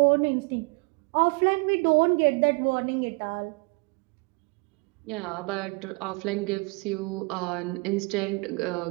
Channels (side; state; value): left; quieter; 30.1 dB